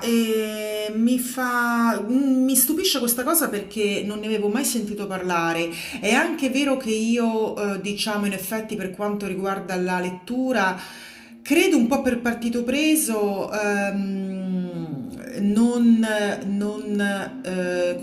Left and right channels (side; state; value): both; identical; correlation 1.00